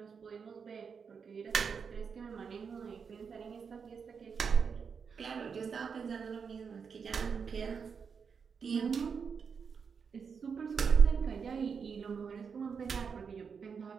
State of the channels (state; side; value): quieter; left; 6.1 dB